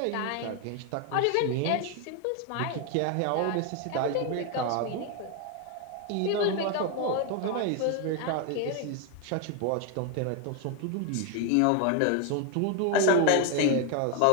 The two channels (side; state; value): both; different; correlation 0.01